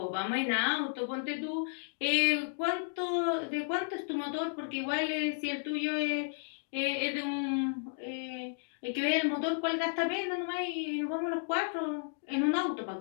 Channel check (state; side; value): silent; right; digital silence